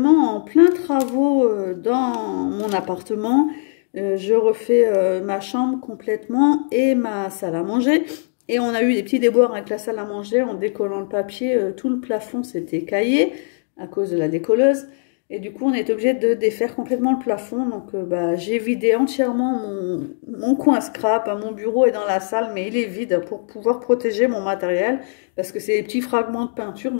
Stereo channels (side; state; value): right; silent; digital silence